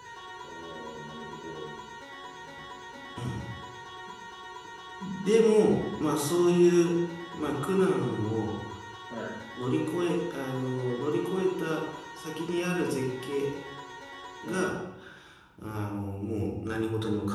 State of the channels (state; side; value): identical; both; correlation 1.00